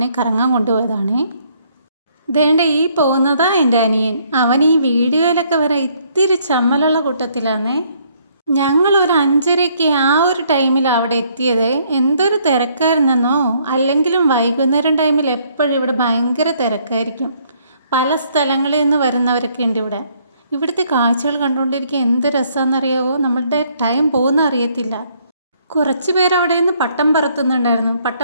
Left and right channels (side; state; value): both; inverted; correlation -0.67